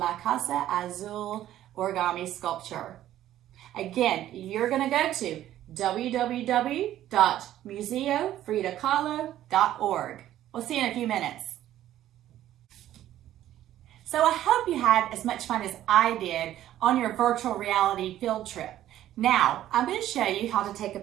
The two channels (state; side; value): quieter; left; 12.8 dB